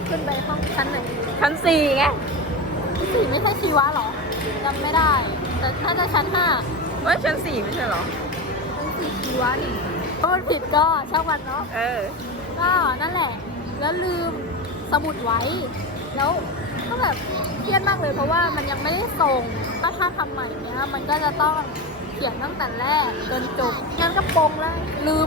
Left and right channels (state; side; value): normal; both; correlation 0.21